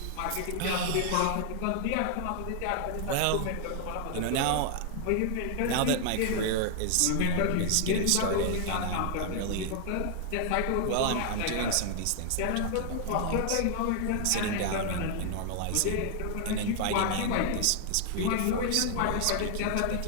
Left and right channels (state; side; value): different; both; correlation 0.00